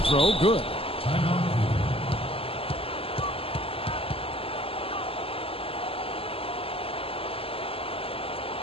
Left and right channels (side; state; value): right; late; 0.27 ms